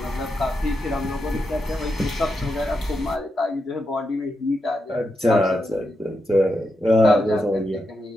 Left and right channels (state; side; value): normal; both; correlation 0.86